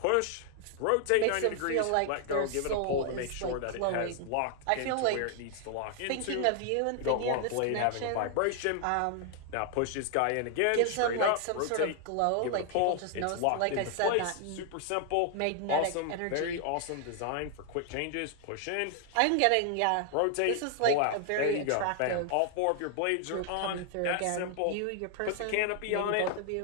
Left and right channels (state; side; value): different; both; correlation 0.00